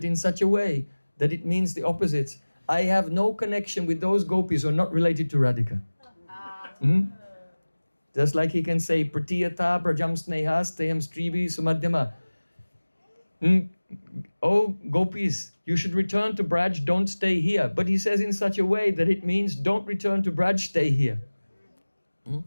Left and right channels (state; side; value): inverted; both; correlation -1.00